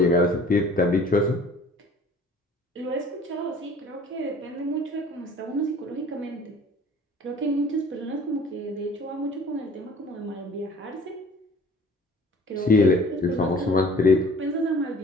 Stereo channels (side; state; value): both; normal; correlation 0.49